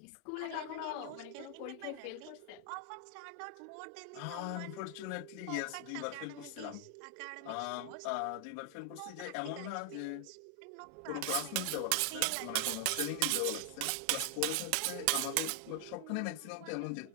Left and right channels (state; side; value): different; both; correlation 0.00